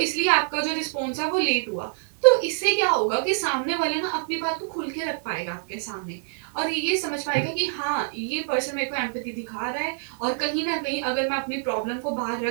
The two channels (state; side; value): silent; left; 61 dB below the other